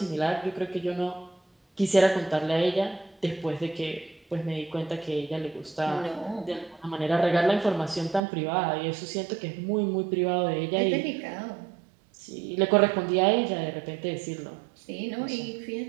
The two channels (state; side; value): drops out; left; at 8.2 s